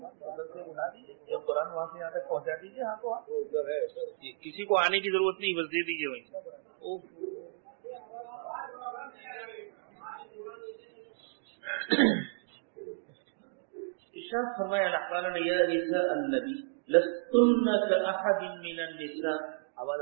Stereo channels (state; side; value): silent; left; digital silence